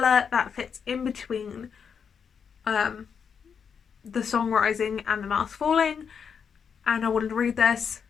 that fits in between the songwriting and the mask falling, and I wanted to read this.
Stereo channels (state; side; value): quieter; right; 6.8 dB